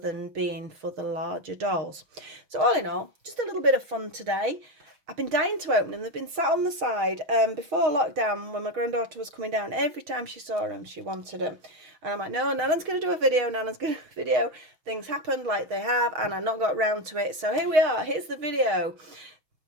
being for the larger dolls. So all in all, just a little bit of fun today. I've been dying to open them. They've been sat on the side. Before lockdown, when my granddaughter was coming down, every time she saw them, she wanted them. And I'm like, no, Nana's going to do a video. Nana's going to do a video. Things happened like they have, and I not got round to it. So here we are. Here's the video.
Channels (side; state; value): left; late; 6.1 ms